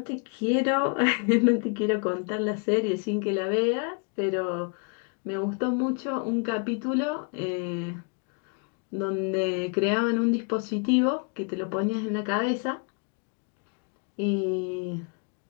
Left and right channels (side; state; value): right; quieter; 37.9 dB